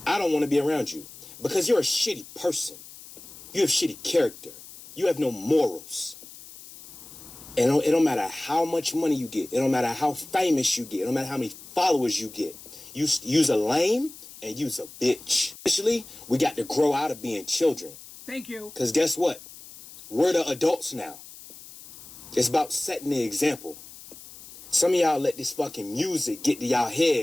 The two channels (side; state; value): left; noise; hiss, 17 dB below the sound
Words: I don't want to be around you because you're a shitty person. You have shitty character. You have no morals. And it don't matter how much money you get. It don't matter how famous you get. It don't matter how many followers you get. You's a lame and you's a bitch. Initially, we got to grow out of being children. Thank you. Because guess what? We're the adults now. It's about setting the example. Some of y'all let this fucking music get to y'all